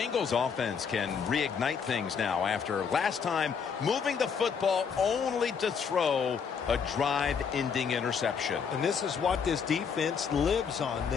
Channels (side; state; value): right; quieter; 6.4 dB